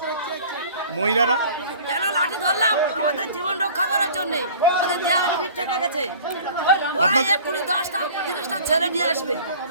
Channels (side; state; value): both; inverted; correlation -0.45